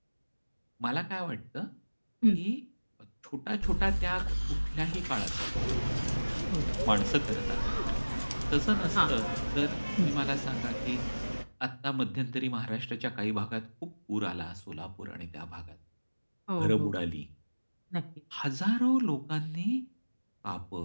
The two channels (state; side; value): inverted; both; correlation -1.00